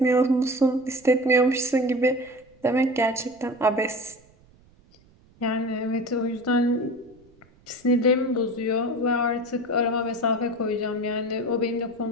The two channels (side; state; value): right; noise; rumble, 29 dB below the sound